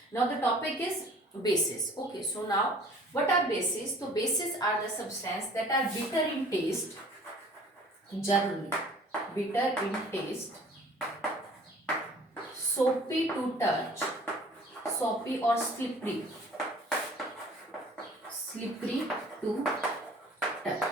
Now the topic is bases. Okay, so now what are bases? तो bases are the substance that are bitter in taste, generally bitter in taste, soapy to touch, soapy or slippery, slippery to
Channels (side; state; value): both; normal; correlation 0.50